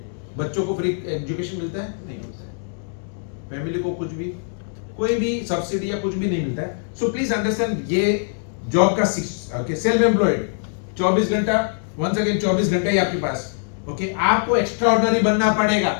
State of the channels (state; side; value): silent; right; digital silence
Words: बच्चों को फ्री एजुकेशन मिलता है? नहीं मिलता है। फैमिली को कुछ भी, कोई भी सब्सिडी या कुछ भी नहीं मिलता है। सो प्लीज अंडरस्टैंड, ये जॉब का सेल्फ एम्प्लॉयड 24 घंटा, वंस अगेन 24 घंटा ही आपके पास। ओके, आपको एक्स्ट्रा ऑर्डिनरी बनना पड़ेगा,